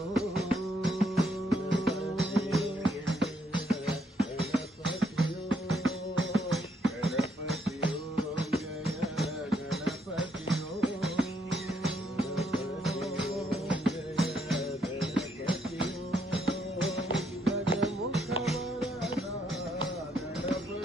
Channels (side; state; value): both; normal; correlation 0.73